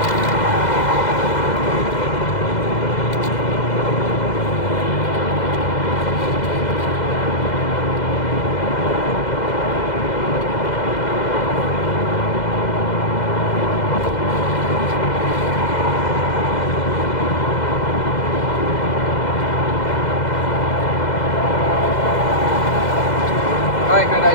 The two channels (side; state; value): right; late; 2.0 ms